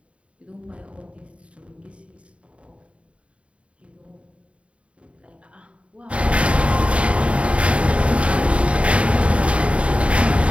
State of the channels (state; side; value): late; left; 0.061 ms